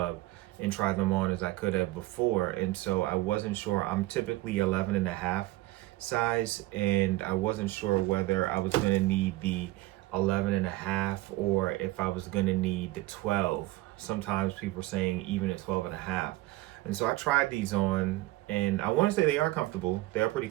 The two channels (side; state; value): left; quieter; 18.3 dB